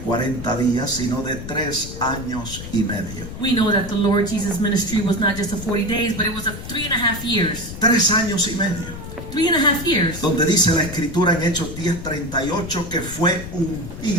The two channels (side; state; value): left; noise; rumble, 10 dB below the sound